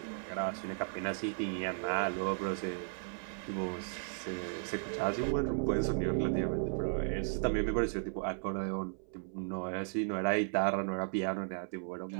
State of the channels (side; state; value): left; silent; 54 dB below the other